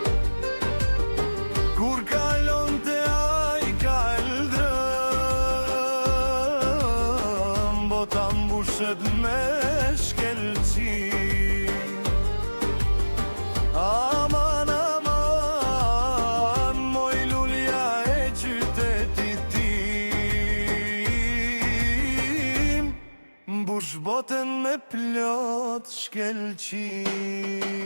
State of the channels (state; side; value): inverted; both; correlation -1.00